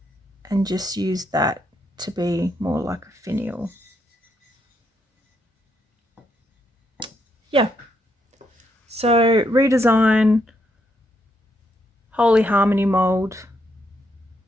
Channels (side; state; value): both; normal; correlation 0.77